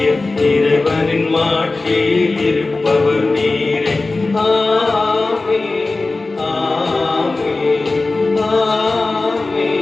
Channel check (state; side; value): quieter; right; 3.4 dB